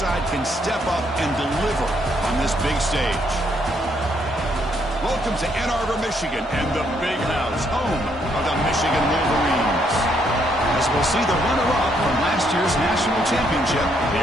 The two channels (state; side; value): normal; both; correlation 0.72